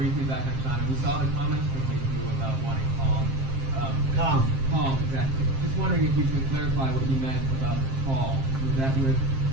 back on China, we saw the comments from you about wanting calm. Calm. Calm, exactly. Just wondering if you could clarify what you meant about the call. Was that with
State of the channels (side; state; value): left; late; 7.5 ms